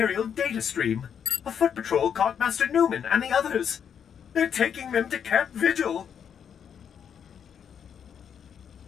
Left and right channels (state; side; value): quieter; right; 7.9 dB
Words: data stream. A foot patrol caught Master Newman and the others. They're taking them to Camp Vigil.